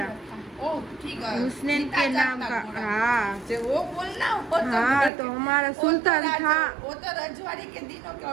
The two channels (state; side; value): drops out; left; at 5.1 s